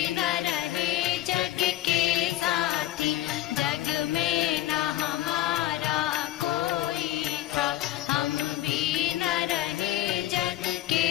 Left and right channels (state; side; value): quieter; right; 14.8 dB